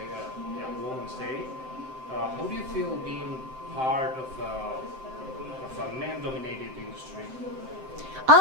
Women's Day. How do you feel being part of a man-dominated industry?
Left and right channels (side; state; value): left; late; 7.7 ms